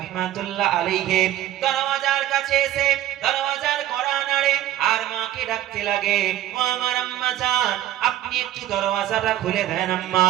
আলাইহি দরওয়াজার কাছে এসে দরওয়াজার কড়া নাড়ে আর মাকে ডাকতে লাগে, ও আমার আম্মা জান, আপনি একটু দরওয়াজাটা খুলে দেন আম্মা,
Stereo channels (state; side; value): quieter; left; 13.0 dB